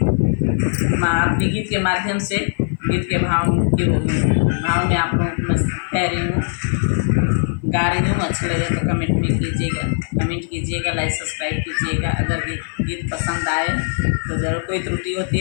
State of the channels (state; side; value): silent; right; 56 dB below the other